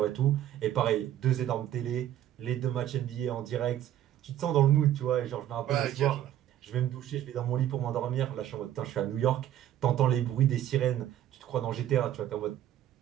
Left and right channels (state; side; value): quieter; left; 11.9 dB